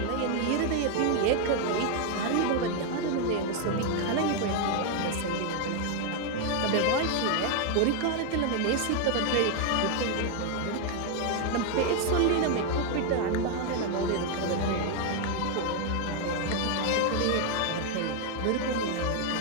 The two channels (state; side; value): different; both; correlation 0.01